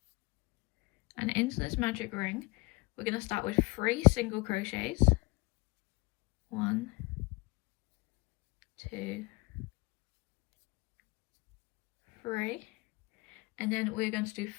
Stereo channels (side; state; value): right; quieter; 24.6 dB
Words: And into this magic ring, we're going to start with 3 single crochets. 1, 2, 3. And then we're going to do